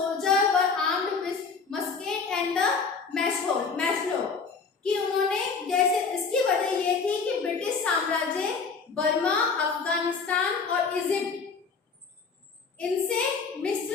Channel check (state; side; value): quieter; right; 5.1 dB